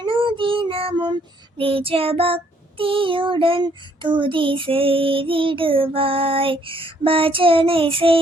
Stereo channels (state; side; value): normal; both; correlation 0.66